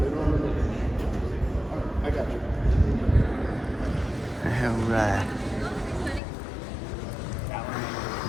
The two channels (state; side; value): drops out; right; at 6.2 s